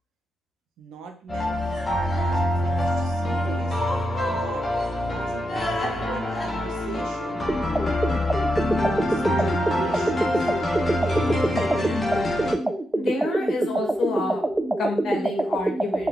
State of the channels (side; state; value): both; normal; correlation 0.86